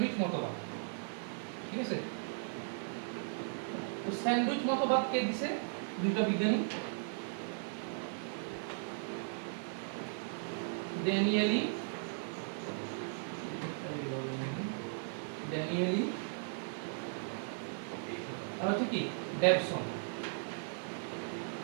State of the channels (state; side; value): silent; left; 53 dB below the other